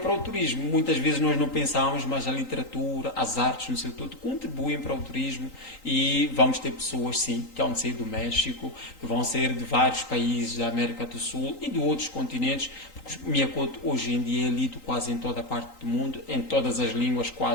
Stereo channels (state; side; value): late; right; 3.9 ms